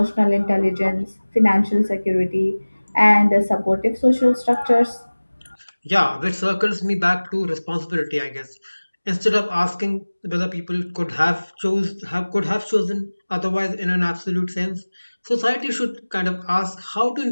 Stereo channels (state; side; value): inverted; both; correlation -1.00